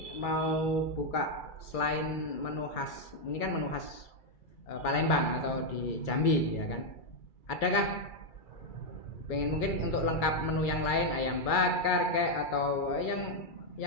mau buka selain menu khas, ini kan menu khas Palembang atau di Jambi, ya kan. Adakah pengen mungkin untuk lengkap menu yang lain, ayam bakar kayak atau yang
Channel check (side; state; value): right; late; 2.3 ms